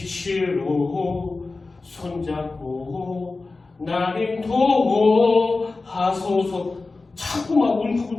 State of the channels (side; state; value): right; quieter; 3.6 dB